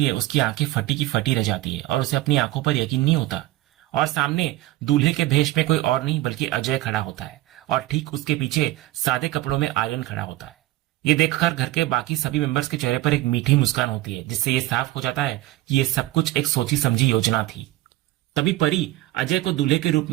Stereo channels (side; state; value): left; quieter; 16.8 dB